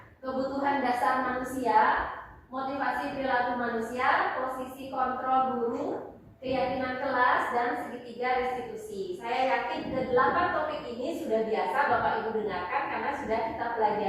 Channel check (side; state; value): both; identical; correlation 1.00